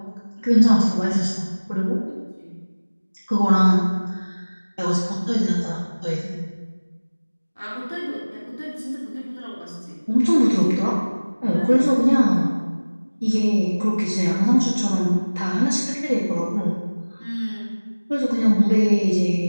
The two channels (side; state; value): both; inverted; correlation -1.00